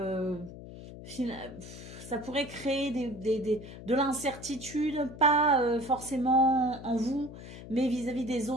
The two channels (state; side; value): noise; left; hum, 14 dB below the sound